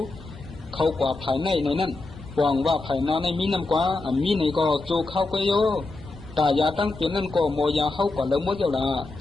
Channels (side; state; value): right; quieter; 3.2 dB